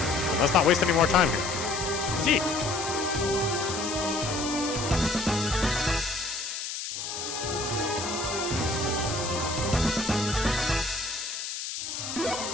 But let's not waste any more time here. Gee.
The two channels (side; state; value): left; noise; hiss, 5 dB below the sound